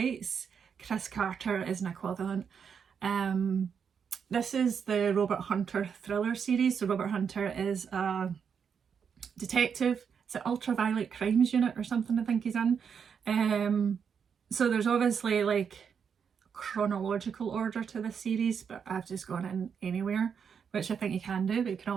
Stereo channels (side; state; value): left; quieter; 6.9 dB